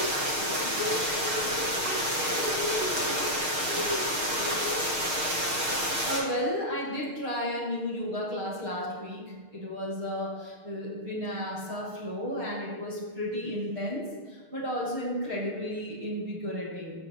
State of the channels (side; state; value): left; late; 6.5 ms